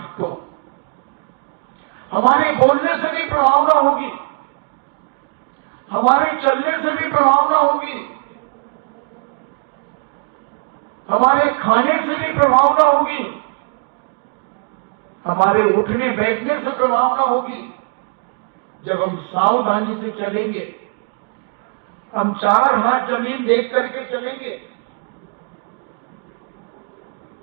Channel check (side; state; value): left; quieter; 36.9 dB